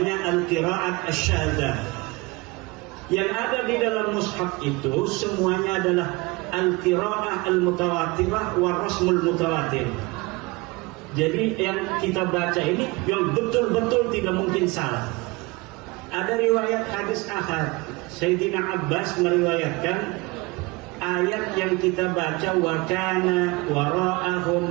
Al-Qiraat Asy-Syadzah. Yang ada di dalam mushaf itu semuanya adalah Al-Qiraah Al-Mutawatirah wa Rasmul Mutawatir. Jadi yang kita baca ini yang betul-betul tidak mungkin salah. Ada riwayat hadis ahad, Sayyidina Abbas meriwayatkan ayat yang kita baca, wa kana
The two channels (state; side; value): quieter; left; 24.4 dB